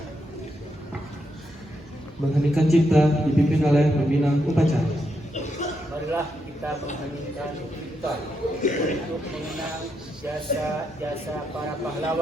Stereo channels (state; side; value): normal; both; correlation 0.81